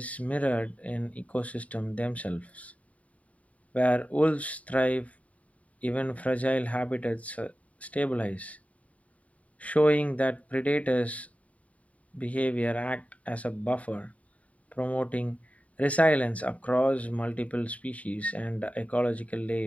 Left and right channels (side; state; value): right; late; 0.068 ms